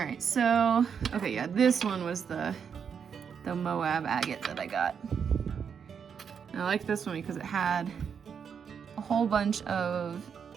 so, okay, yeah, this one was the Moab agate that I got. And I like this one because it had a whole bunch of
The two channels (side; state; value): left; quieter; 7.0 dB